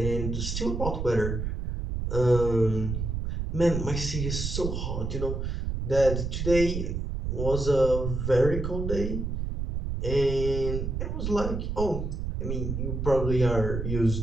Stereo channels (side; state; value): right; noise; rumble, 3 dB below the sound